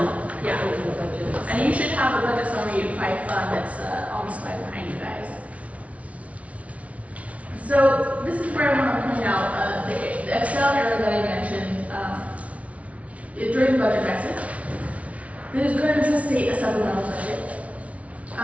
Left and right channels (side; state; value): left; late; 0.065 ms